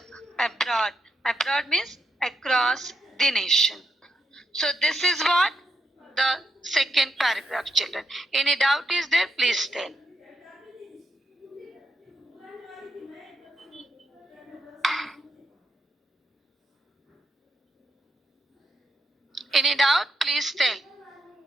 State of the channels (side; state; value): both; normal; correlation 0.81